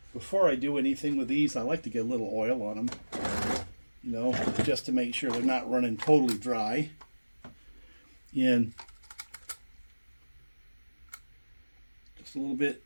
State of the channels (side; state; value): both; inverted; correlation -1.00